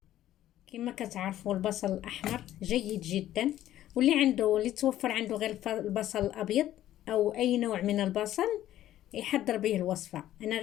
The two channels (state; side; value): quieter; right; 13.0 dB